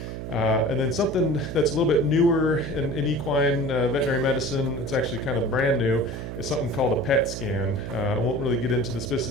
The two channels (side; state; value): right; noise; hum, 7 dB below the sound